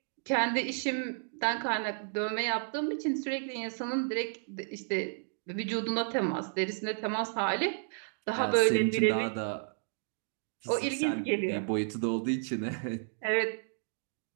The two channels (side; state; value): left; silent; digital silence